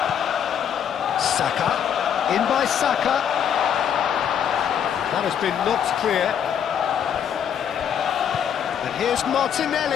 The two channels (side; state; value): right; quieter; 8.6 dB